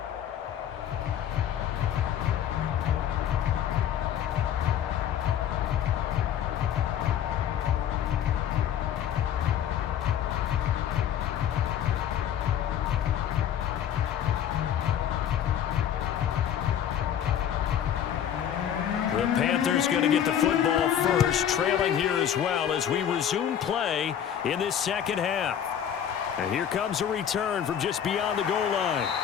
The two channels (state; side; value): quieter; right; 9.6 dB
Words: The Panthers going to get the football first, trailing here as well as we resume play in this second half. And here comes a return from just beyond the goal line.